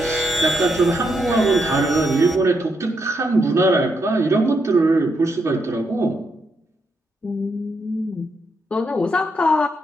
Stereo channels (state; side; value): normal; both; correlation 0.79